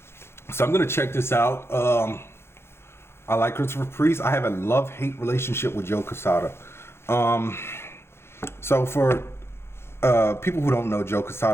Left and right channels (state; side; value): late; right; 0.12 ms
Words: So I'm going to check this out. I like Christopher Priest. I have a love-hate relationship with Joe Quesada. So for people who don't know, Joe